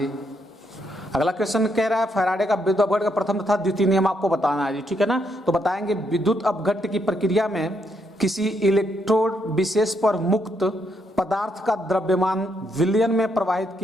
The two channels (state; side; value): normal; both; correlation 0.76